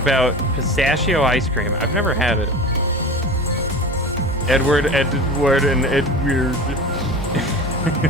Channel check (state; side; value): normal; both; correlation 0.33